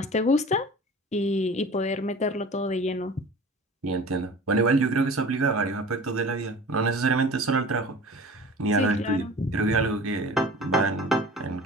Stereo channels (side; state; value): both; normal; correlation 0.40